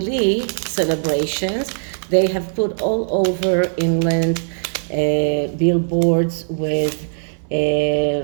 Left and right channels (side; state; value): left; silent; digital silence